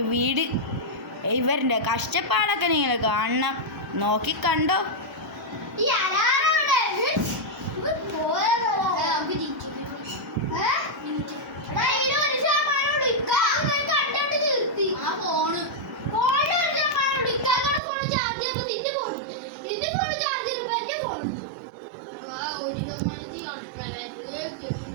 വീട്. ഇവരുടെ കഷ്ടപ്പാടൊക്കെ നിങ്ങൾ കാണണം. നോക്കിക്കണ്ടോ.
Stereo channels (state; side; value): drops out; left; at 17.8 s